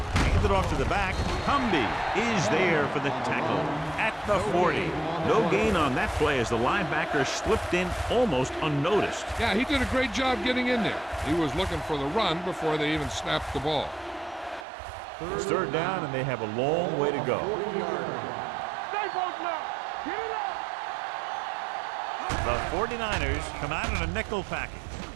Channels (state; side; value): drops out; left; at 14.7 s